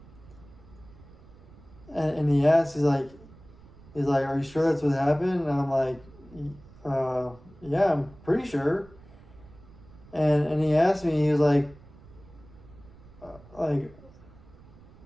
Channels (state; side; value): noise; right; rumble, 22 dB below the sound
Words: and he asked, he's like, are you sure that's what happened? And I'm like, yeah, I'm pretty sure. And he asked me, he was like, oh,